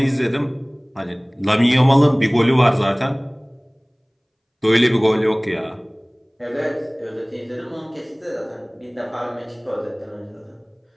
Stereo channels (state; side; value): identical; both; correlation 1.00